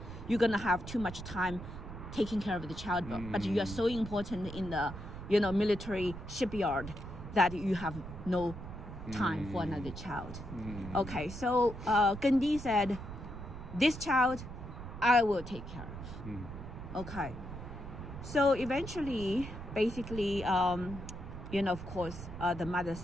you're going to have too much time taking care of the child. But you are so important in the military shipyard that you have no time for another child. Okay, so Gen Di said, this child, I will take care of. Okay. So eventually, basically, of course, the mother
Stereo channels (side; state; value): right; noise; rumble, 10 dB below the sound